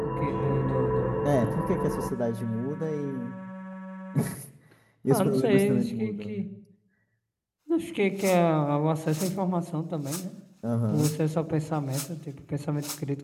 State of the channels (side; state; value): both; identical; correlation 1.00